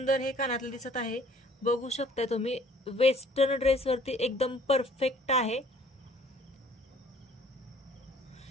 हे कानातलं दिसत आहे. बघू शकता तुम्ही वेस्टर्न ड्रेसवरती एकदम परफेक्ट आहे.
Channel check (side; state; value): both; normal; correlation 0.55